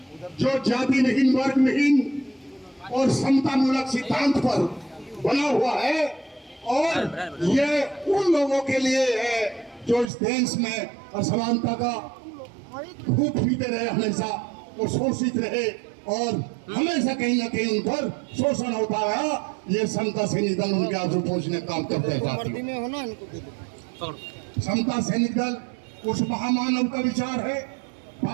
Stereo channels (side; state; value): left; drops out; at 10.1 s